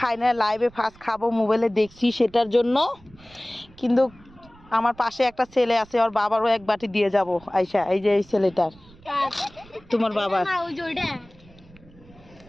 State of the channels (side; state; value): right; noise; rumble, 25 dB below the sound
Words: না, লাইভে ফার্স্ট খাবো, মোবাইলে দেখছি সেটার জন্য। কিন্তু আমার পাশে একটা ছেলে আছে, ওর বাবারও এক বাটি দিয়ে যাব আয়শা। এই যে এই ছেলেটার, তোমার বাবার।